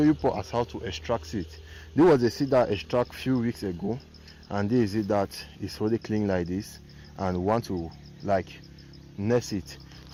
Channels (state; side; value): identical; both; correlation 1.00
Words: you as how to extract it. This was the seed that I extracted a few weeks ago, and this is it that is really clean like this, and want to nest it.